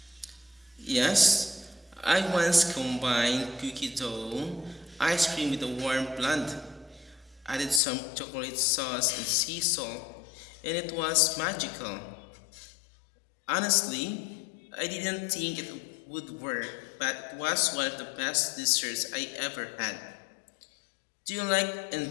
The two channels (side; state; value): right; drops out; at 7.8 s